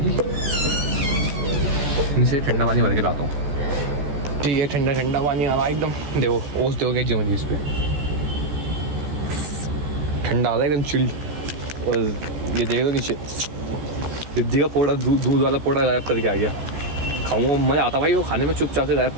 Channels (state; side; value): late; left; 14 ms